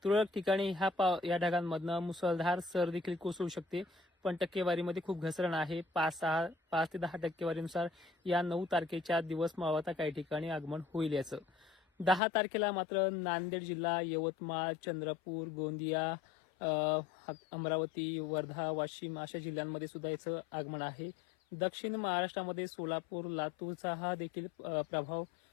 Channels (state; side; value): drops out; right; at 12.2 s